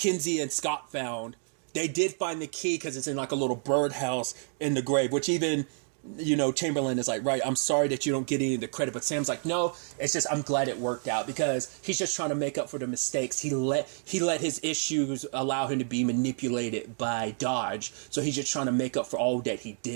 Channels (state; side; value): silent; left; 58 dB below the other